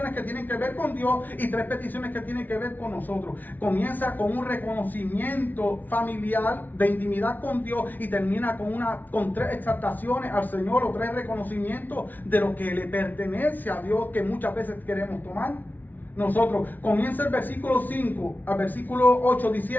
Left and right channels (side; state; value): right; late; 0.082 ms